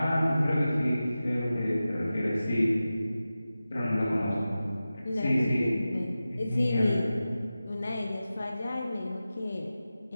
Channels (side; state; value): both; inverted; correlation -0.94